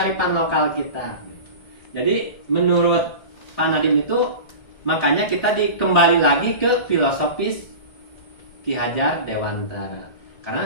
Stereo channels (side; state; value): right; late; 1.7 ms